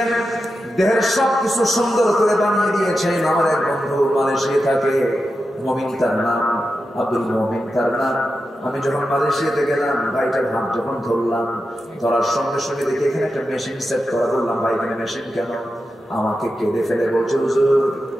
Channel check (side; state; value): both; normal; correlation 0.90